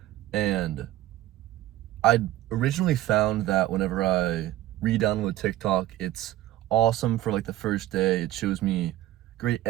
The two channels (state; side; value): quieter; left; 14.7 dB